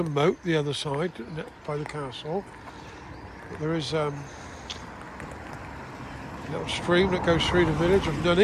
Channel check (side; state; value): both; identical; correlation 1.00